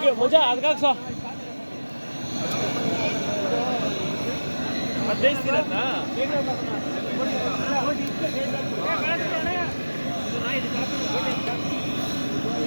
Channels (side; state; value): both; inverted; correlation -1.00